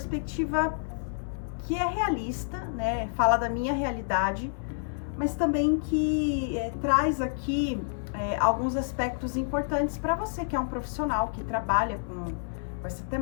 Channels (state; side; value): silent; right; 59 dB below the other